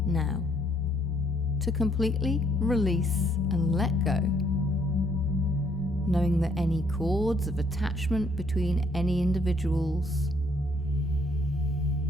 now to completely release and let go, knowing that any cords of attachment between any individuals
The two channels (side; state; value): both; normal; correlation 0.68